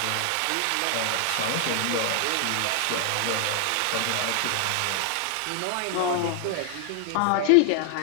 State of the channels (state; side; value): different; both; correlation 0.00